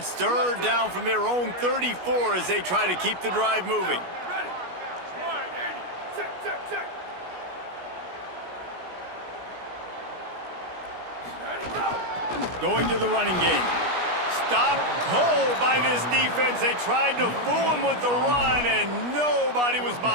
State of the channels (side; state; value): left; late; 17 ms